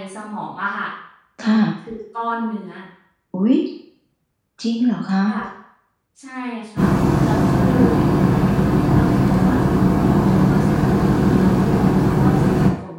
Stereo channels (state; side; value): identical; both; correlation 1.00